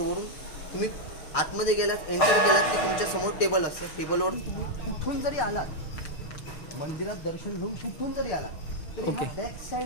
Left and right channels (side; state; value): right; late; 6.6 ms